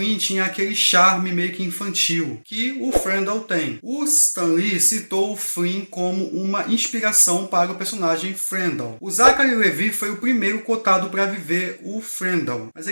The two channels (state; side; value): inverted; both; correlation -1.00